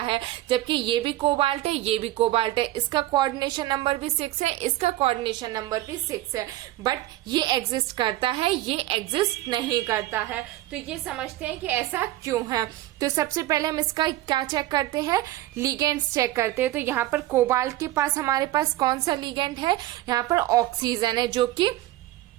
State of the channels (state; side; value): quieter; left; 16.0 dB